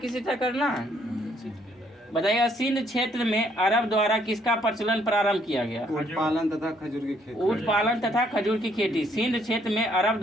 तरह करना है, बताइएगा सिंध क्षेत्र में अरब द्वारा किसका प्रचलन प्रारंभ किया गया? ऊँट पालन तथा खजूर की खेती। ऊँट पालन तथा खजूर की खेती सिंध क्षेत्र में अरब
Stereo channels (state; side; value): normal; both; correlation 0.68